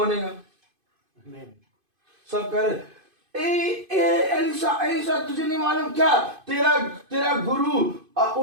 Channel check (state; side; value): late; left; 2.5 ms